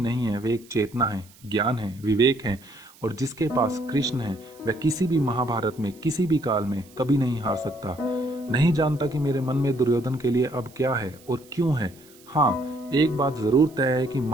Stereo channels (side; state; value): right; noise; hiss, 26 dB below the sound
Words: है, वे एक चेतना है, ज्ञान है, विवेक है, और जिसके पास कृष्ण है वह किसी भी महाभारत में, किसी भी काल में कभी नहीं हार सकता। नहीं जानता कि मेरे मन में दुर्योधन के लिए अब क्या है और क्यों है। हाँ, एक बात जरूर तय है कि